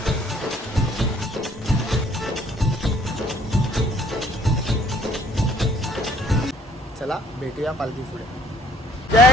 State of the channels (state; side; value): normal; both; correlation 0.60